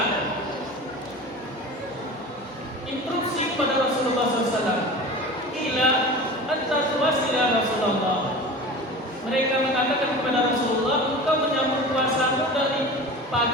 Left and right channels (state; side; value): normal; both; correlation 0.35